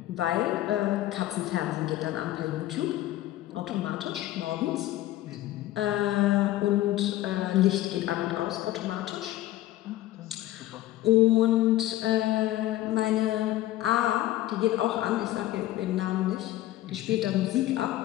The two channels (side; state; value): right; quieter; 14.9 dB